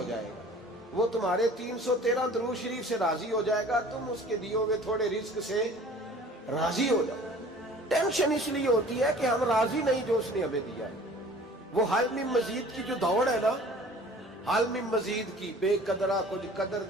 جائے گا، وہ تمہارے 313 درود شریف سے راضی ہو جائے گا، تم اس کے دیے ہوئے تھوڑے رزق سے راضی ہو جاؤ۔ ٹینشن اس لیے ہوتی ہے کہ ہم راضی نہیں جو اس نے ہمیں دیا ہے۔ وہ حل میں مزید کی جو دوڑ ہے نا، حل میں مزید کی، بے قدرہ کچھ قدر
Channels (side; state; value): both; normal; correlation 0.47